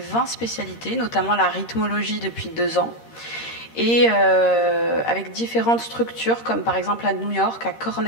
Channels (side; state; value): right; late; 13 ms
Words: spécialités, notamment la rythmologie depuis 2 ans, et avec différentes structures, comme par exemple à New York, à